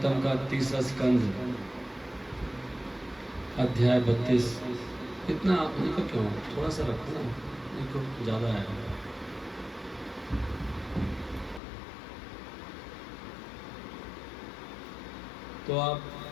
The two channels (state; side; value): drops out; right; at 11.6 s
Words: का 30वां स्कंद अध्याय 32। इतना इनको क्यों थोड़ा सा रखो ना, इनको ज़्यादा है। तो आप